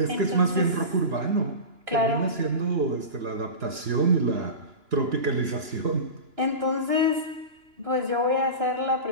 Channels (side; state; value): left; late; 2.9 ms